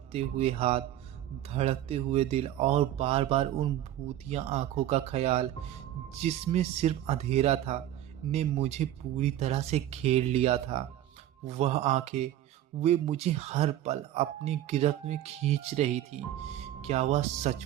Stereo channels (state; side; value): quieter; left; 12.7 dB